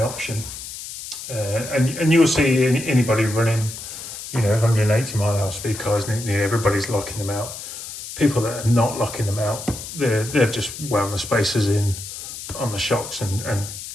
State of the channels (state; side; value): noise; left; hiss, 10 dB below the sound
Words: option. And you'll see anybody running, 180 mile an hour speed cars, nearly everybody's locking them out. People that are not locking them out, they've just wound the spacers in on the shocks and